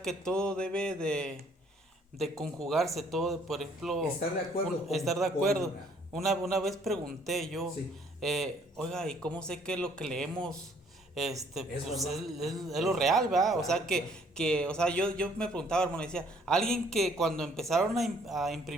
que todo debe de conjugarse, todo, por ejemplo. Estar de acuerdo. Estar de acuerdo. Una vez pregunté yo, Sí. oiga, ¿y cómo sé que lo que leemos pues es verdad. lo real, ¿verdad? Claro, O sea, o sea, yo me preguntaba, hermano, decía, alguien que cuando empezaron a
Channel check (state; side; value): normal; both; correlation 0.62